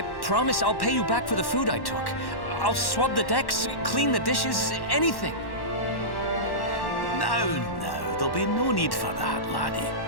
promise I'll pay you back for the food I took. I'll swab the decks, clean the dishes, anything. No, there'll be no need for that, laddie.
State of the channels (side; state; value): right; late; 1.1 ms